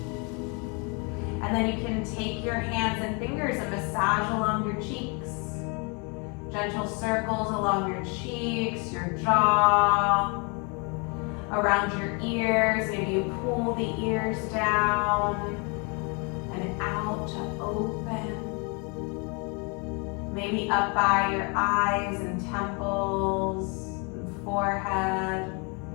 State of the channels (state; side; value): quieter; right; 33.1 dB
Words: And then you can take your hands and fingers and massage along your cheeks. Gentle circles along your cheeks, your jaw, around your ears. Maybe you pull the ears down and out to open. Maybe up by your eyes and temples, and forehead,